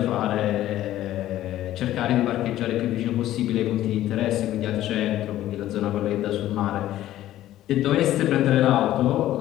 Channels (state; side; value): quieter; right; 13.7 dB